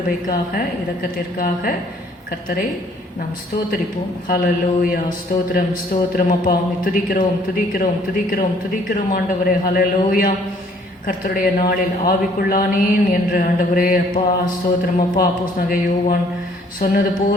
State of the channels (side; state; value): both; normal; correlation 0.60